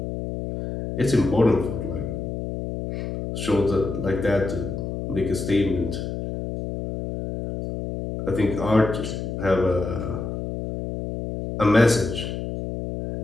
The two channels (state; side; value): noise; left; hum, 5 dB below the sound